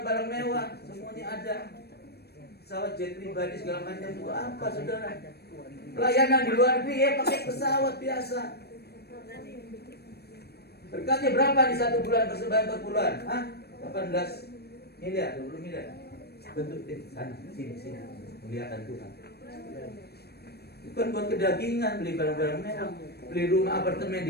mewah, semuanya ada. Pesawat jet pribadi segala macam itu apa, saudara? Pelayanan di luar negeri ya pakai pesawat biasa. Berkatnya berapa di 1 bulan persembahan per bulan? 18 miliar, 20 miliar. Bentuk sana, sini, muliakan Tuhan. Bukan buat kedagingan, beli barang-barang mewah, beli rumah apartemen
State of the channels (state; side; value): late; right; 0.47 ms